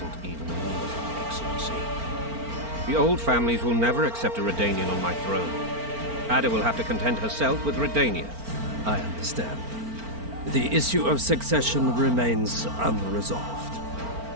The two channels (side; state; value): left; late; 4.4 ms